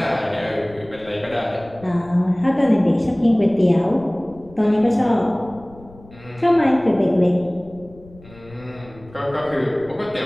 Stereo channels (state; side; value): noise; left; rumble, 22 dB below the sound